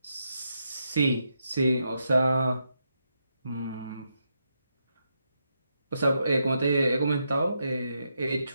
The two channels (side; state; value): both; inverted; correlation -0.83